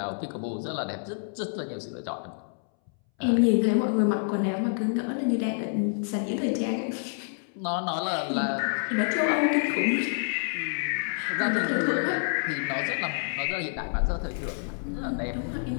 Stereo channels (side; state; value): right; silent; 59 dB below the other